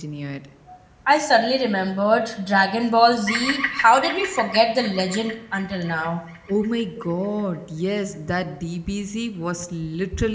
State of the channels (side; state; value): both; identical; correlation 1.00